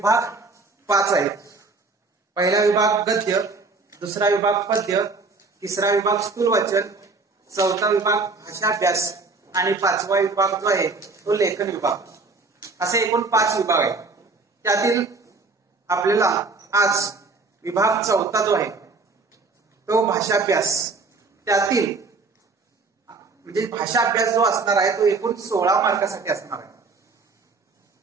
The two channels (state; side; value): quieter; left; 3.9 dB